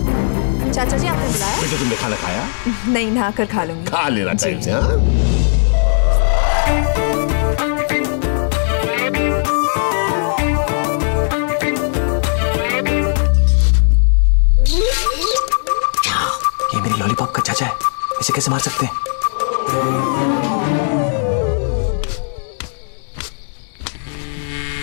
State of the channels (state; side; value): silent; right; digital silence